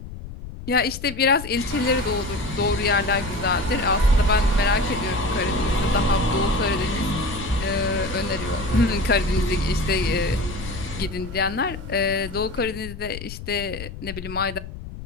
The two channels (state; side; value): noise; left; rumble, 11 dB below the sound